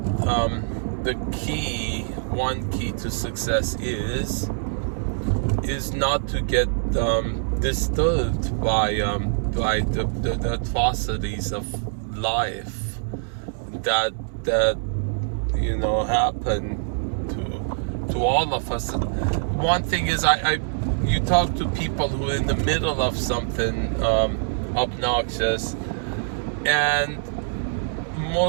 one key to success is not to get disturbed by the atrocities of life that happen to all of us. One thing is, you talk to people who are in the middle of something obnoxious, and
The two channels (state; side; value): silent; left; 62 dB below the other